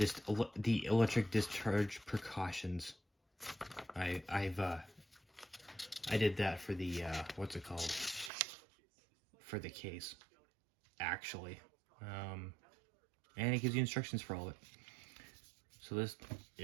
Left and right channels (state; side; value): drops out; left; at 8.3 s